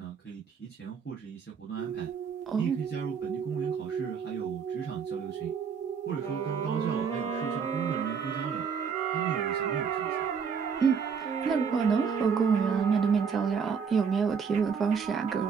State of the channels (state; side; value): quieter; left; 6.3 dB